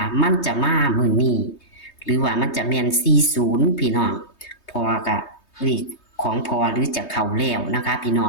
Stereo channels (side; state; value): right; late; 3.2 ms